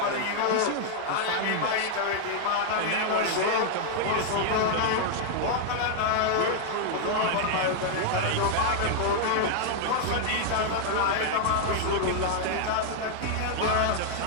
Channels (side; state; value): both; different; correlation -0.01